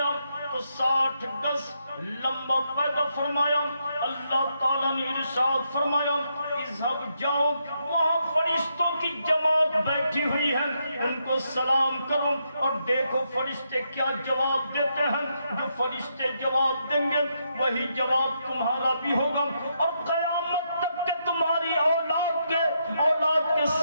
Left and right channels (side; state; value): both; inverted; correlation -0.79